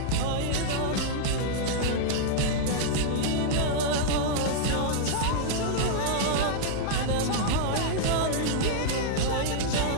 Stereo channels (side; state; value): both; different; correlation -0.01